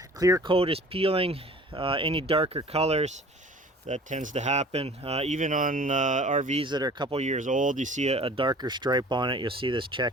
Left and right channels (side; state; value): both; normal; correlation 0.47